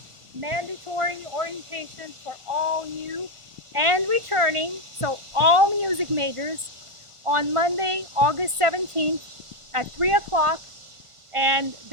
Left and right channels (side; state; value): left; late; 1.4 ms